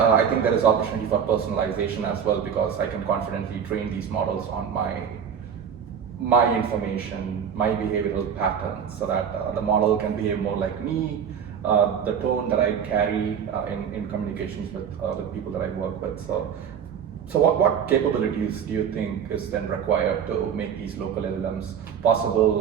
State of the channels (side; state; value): left; quieter; 7.7 dB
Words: think there is opportunity for personalization as well, because I can confidently train these models on my information, my behavioral patterns, so that the model can behave more like me, the tone that I carry in communications with people that I work with. So what capabilities do you think is then required to make these local LLMs